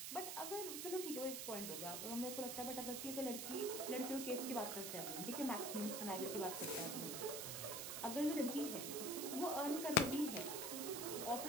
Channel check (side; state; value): right; noise; hiss, 4 dB below the sound